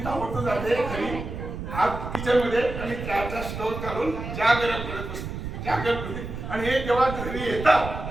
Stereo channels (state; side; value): noise; right; rumble, 7 dB below the sound